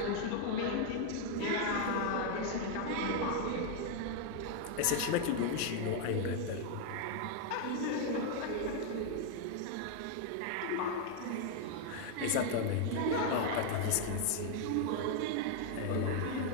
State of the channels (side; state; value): both; different; correlation 0.00